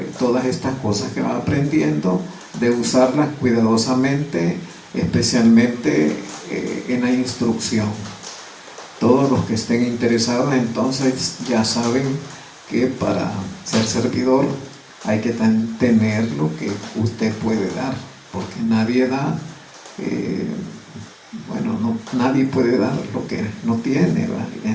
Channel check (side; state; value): both; identical; correlation 1.00